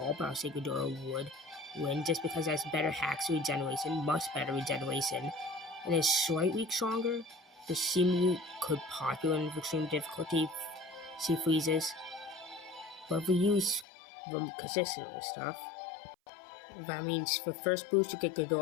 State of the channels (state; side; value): drops out; right; at 13.9 s